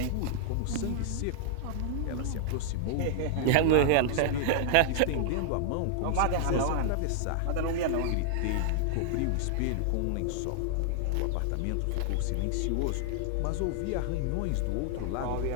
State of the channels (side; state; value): both; different; correlation -0.01